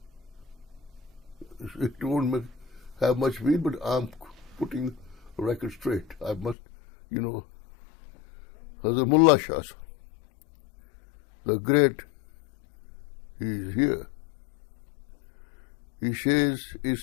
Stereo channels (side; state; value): right; drops out; at 6.6 s